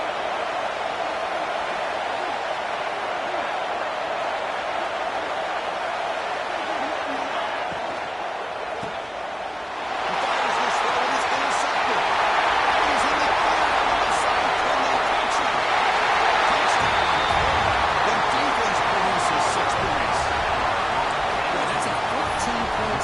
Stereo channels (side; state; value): both; identical; correlation 1.00